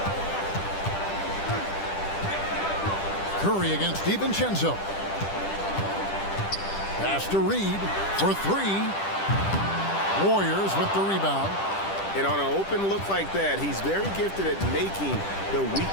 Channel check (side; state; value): right; late; 10 ms